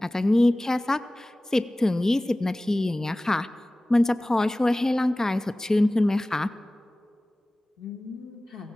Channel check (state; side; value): normal; both; correlation 0.98